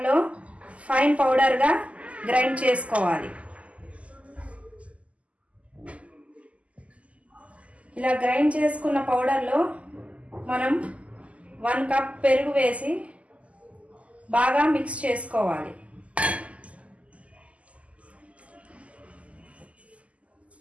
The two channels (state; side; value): late; left; 0.066 ms